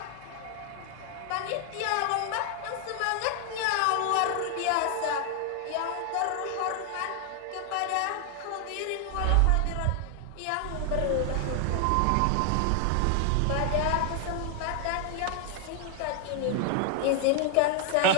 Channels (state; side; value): different; both; correlation 0.00